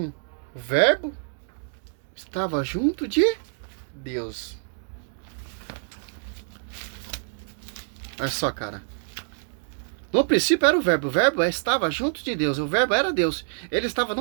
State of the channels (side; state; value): left; silent; digital silence